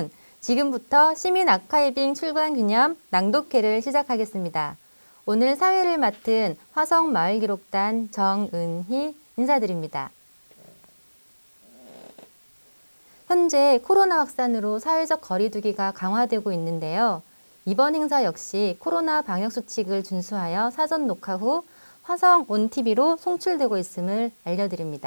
지금부터 시민 아카이빙 출간 기념 낭독회를 시작하겠습니다. 오늘 사회를 맡은 화성마을기록단 정은희 인사드립니다. 현재 코로나 확산으로 사회적 거리두기가 강화되고 있는데요. 이번 행사 역시 코로나 방역수칙을 준수하여 사전 녹화 후 화성 온TV로 송출되고 있음을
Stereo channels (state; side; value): inverted; both; correlation -1.00